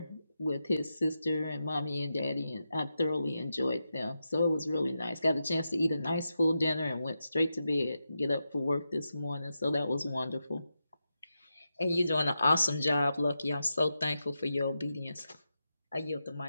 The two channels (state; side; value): inverted; both; correlation -0.88